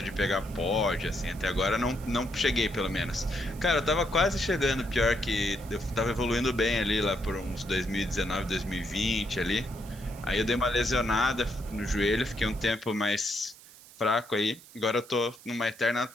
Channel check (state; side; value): noise; right; hiss, 21 dB below the sound